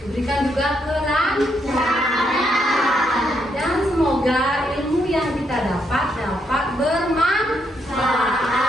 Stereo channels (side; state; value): both; normal; correlation 0.77